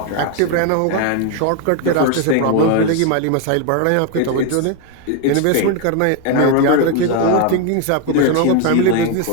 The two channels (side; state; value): both; different; correlation 0.01